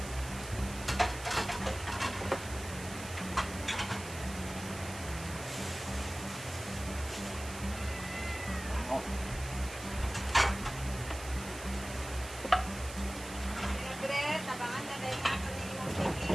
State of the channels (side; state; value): right; noise; hiss, 12 dB below the sound